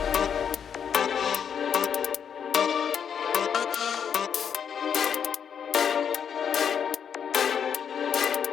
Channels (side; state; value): right; quieter; 7.7 dB